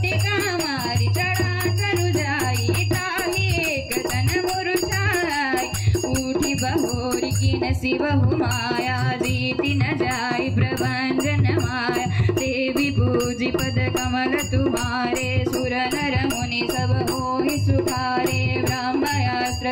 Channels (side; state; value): both; identical; correlation 1.00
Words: मारी चढ़ा करु जाई, ताहि एक तन मुरुषाई, उठी बहोरी की नसी बहु माया, जीति न जाई प्रभंजन माया, देवी पूजी पद कमल तुम्हारे, सुर नर मुनि सब होहि सुखारे, ब्रह्मयास्त्र